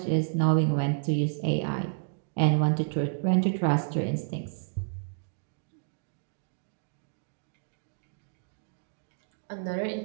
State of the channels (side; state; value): left; silent; digital silence